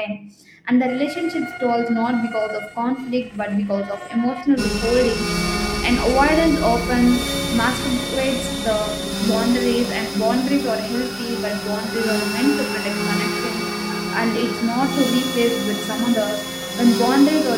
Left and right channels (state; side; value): identical; both; correlation 1.00